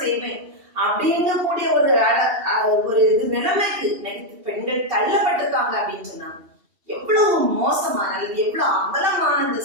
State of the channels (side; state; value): left; late; 2.8 ms